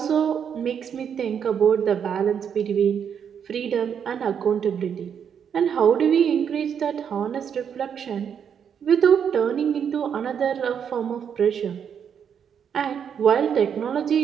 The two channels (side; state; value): left; quieter; 7.8 dB